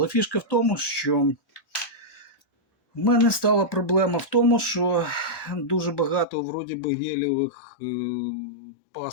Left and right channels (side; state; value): right; drops out; at 6.2 s